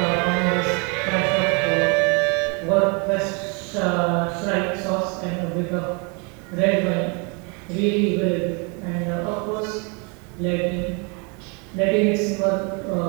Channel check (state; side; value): quieter; left; 33.3 dB